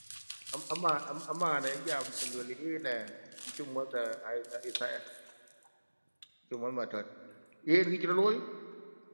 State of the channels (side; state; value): both; inverted; correlation -1.00